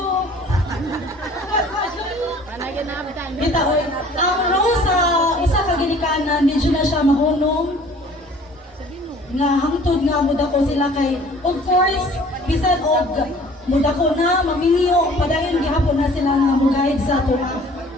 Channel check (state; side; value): normal; both; correlation 0.51